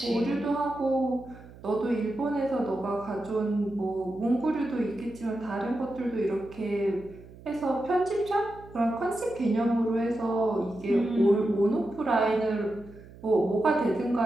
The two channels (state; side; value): noise; right; hum, 19 dB below the sound